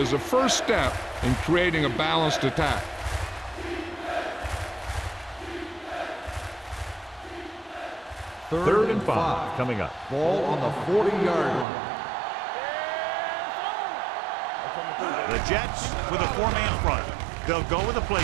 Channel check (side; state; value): left; drops out; at 11.7 s